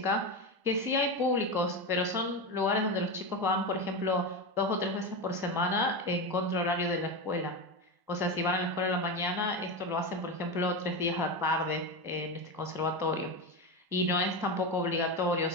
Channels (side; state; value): left; late; 1.0 ms